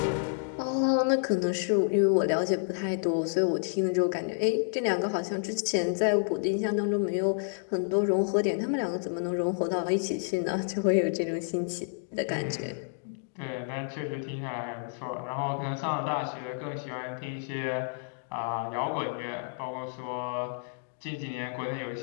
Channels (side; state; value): right; silent; digital silence